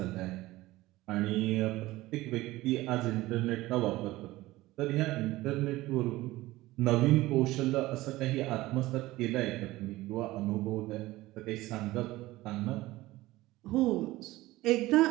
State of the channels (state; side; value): quieter; left; 18.1 dB